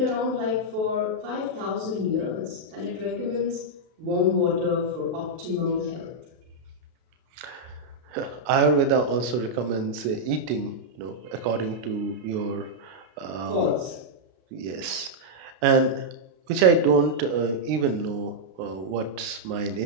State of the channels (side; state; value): left; late; 32 ms